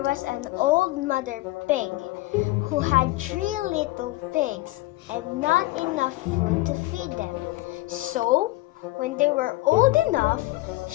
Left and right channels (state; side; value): quieter; right; 19.7 dB